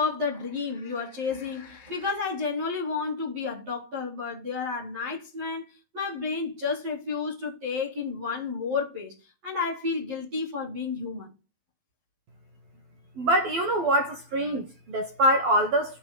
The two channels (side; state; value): left; late; 12 ms